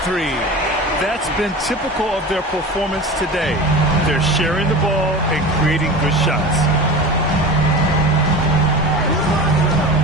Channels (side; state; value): both; normal; correlation 0.32